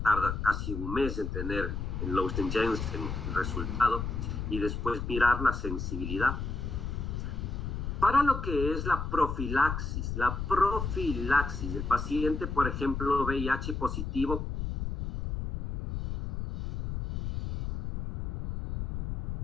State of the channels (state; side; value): noise; left; rumble, 4 dB below the sound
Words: casi 1 mes en tener el Lowsten-Jensen el resultado, y después mirar la sensibilidad. Para lo que es la profilaxis, el paciente, por ejemplo, VIH positivo,